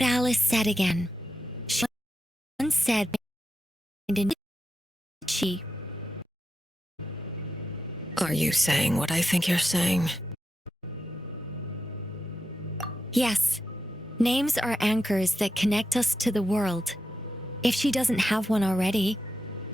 Alice said again. She once said, she. Are you saying what I think you're saying? Yes. Names are anchors that connect us to the world. If she doesn't have one already,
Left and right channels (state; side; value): normal; both; correlation 0.88